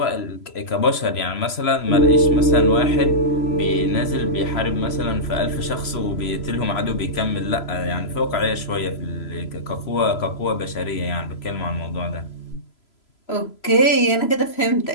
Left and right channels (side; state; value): right; late; 3.0 ms